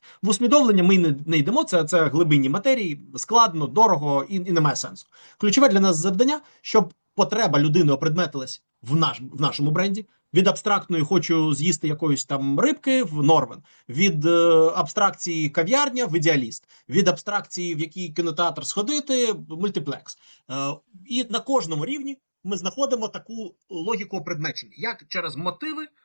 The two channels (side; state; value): both; inverted; correlation -1.00